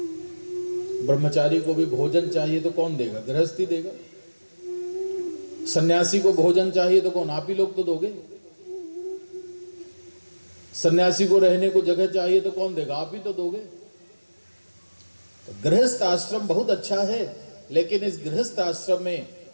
ब्रह्मचारी को भी भोजन चाहिए तो कौन देगा? गृहस्थ ही देगा। सन्यासी को भोजन चाहिए तो कौन? आप ही लोग तो दोगे। सन्यासी को रहने को जगह चाहिए तो कौन देगा? आप ही तो दोगे। तो गृहस्थ आश्रम बहुत अच्छा है, लेकिन इस गृहस्थ आश्रम में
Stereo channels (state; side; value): inverted; both; correlation -1.00